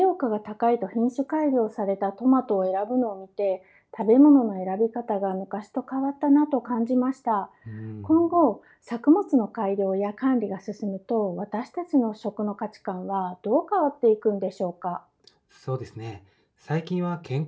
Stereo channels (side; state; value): both; identical; correlation 1.00